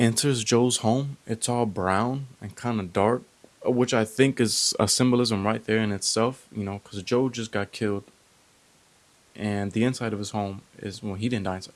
Joe's home, it's all brown and kind of dark, which I think is a symbolism right there in itself. Because Joe just got killed, and the inside of his home is, well, he didn't die inside.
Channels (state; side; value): identical; both; correlation 1.00